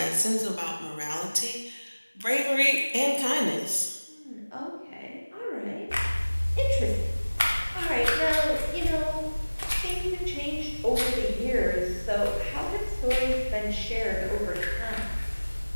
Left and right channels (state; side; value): inverted; both; correlation -1.00